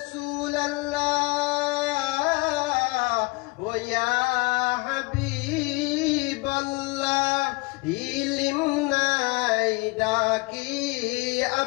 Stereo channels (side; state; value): right; quieter; 25.8 dB